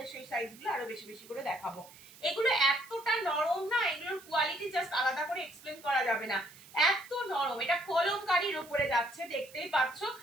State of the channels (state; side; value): noise; right; hiss, 21 dB below the sound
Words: সেই সাইজগুলো আরো বেশি বেশি করে দেখাবো। এগুলো এতটা নরম না, এগুলো জাস্ট আলাদা করে এক্সপ্লেন করা যাবে না, এত নরম। এটা কলমকারীর উপরে যাচ্ছে, দেখতেই পাচ্ছ